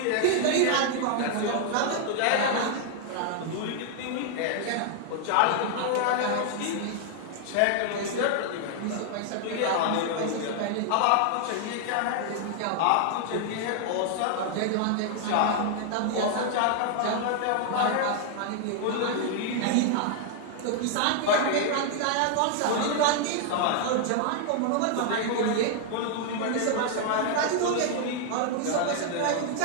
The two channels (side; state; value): both; different; correlation 0.00